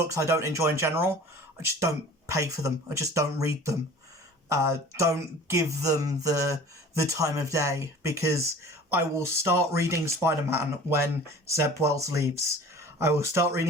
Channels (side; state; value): both; normal; correlation 0.44